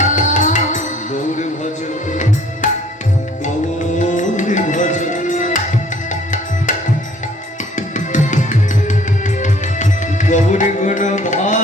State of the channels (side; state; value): both; normal; correlation 0.57